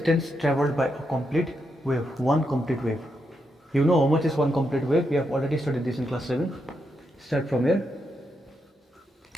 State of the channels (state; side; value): normal; both; correlation 0.83